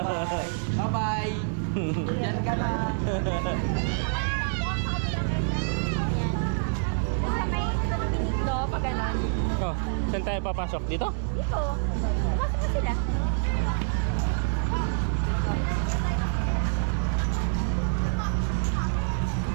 Bye-bye. Yan ka na. Dito, pag ganon. Oh, saan tayo papasok? Dito? Dito. Pasok na sila.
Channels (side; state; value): left; silent; 60 dB below the other